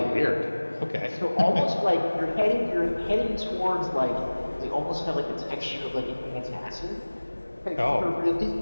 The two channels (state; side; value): inverted; both; correlation -1.00